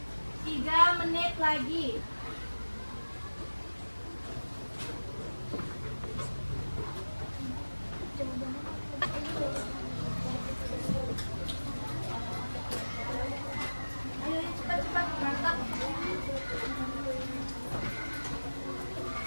3 menit lagi. Ayo cepat-cepat berangkat.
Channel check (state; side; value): inverted; both; correlation -1.00